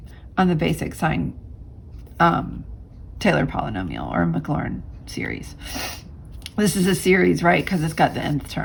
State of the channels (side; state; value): both; identical; correlation 1.00